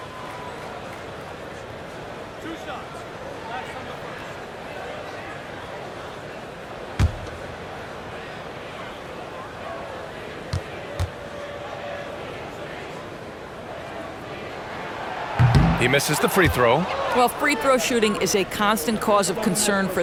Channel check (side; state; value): both; identical; correlation 1.00